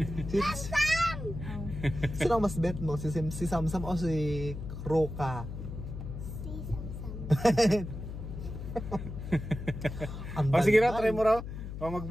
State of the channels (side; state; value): left; noise; hum, 8 dB below the sound